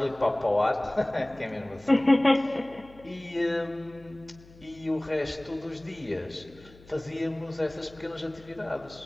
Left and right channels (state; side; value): noise; left; hum, 23 dB below the sound